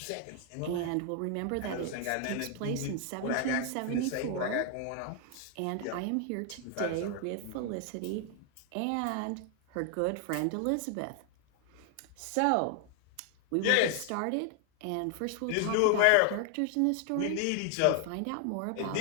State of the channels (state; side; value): different; both; correlation 0.00